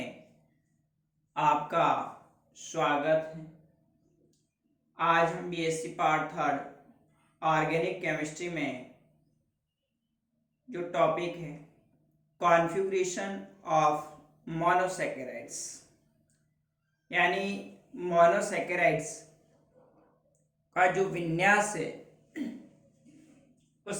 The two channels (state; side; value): identical; both; correlation 1.00